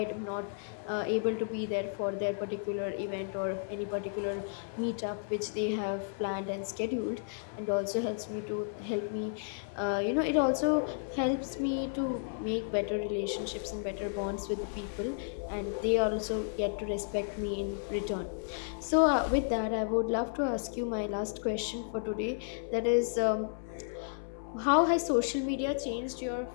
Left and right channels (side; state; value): right; silent; 56 dB below the other